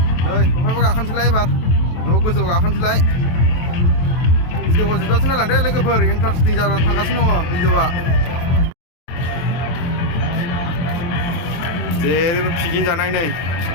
नै बहायबा गाखोनोसैलाय एबार न' गोजौ गाखोनोसैलाय भिडिअखौ जोबजासिम नायलांदो लोगोफोर इन्टारेस्टिं जानानै थांगासिनो दङ भिडिअआ जेरैबो पिकनिक जानाय नै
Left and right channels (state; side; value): late; right; 23 ms